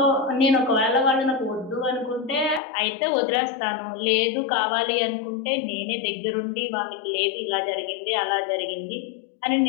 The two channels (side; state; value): right; drops out; at 2.6 s